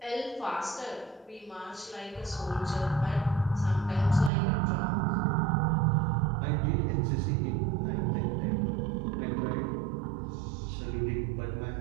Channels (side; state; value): left; drops out; at 4.3 s